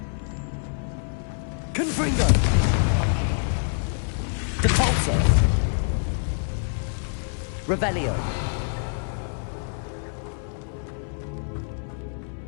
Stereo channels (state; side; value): silent; right; 61 dB below the other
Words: Confringo. Depulso. Revelio.